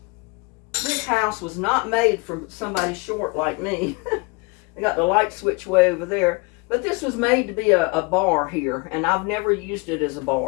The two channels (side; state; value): right; quieter; 28.4 dB